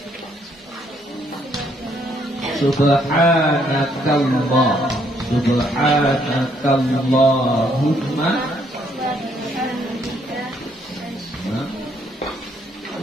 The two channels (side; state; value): both; normal; correlation 0.69